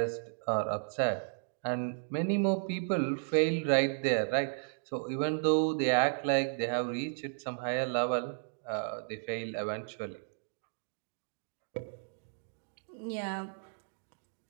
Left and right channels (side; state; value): left; silent; digital silence